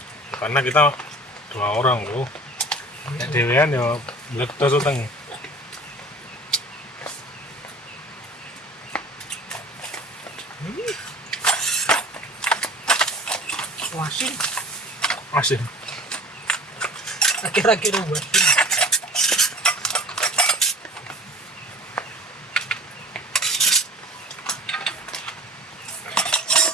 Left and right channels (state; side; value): normal; both; correlation 0.42